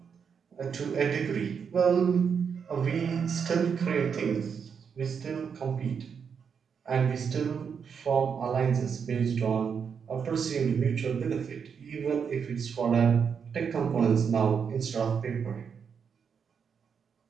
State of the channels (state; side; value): quieter; left; 6.7 dB